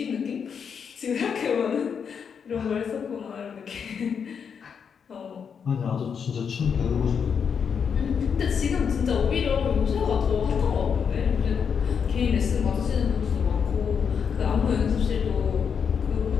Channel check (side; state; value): right; quieter; 6.8 dB